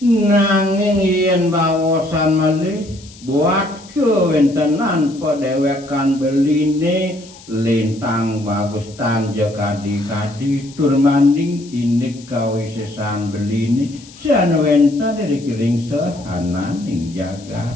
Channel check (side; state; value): left; noise; hiss, 22 dB below the sound